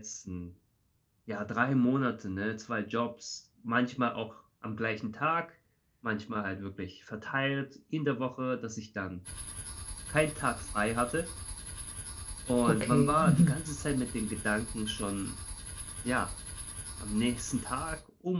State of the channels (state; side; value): identical; both; correlation 1.00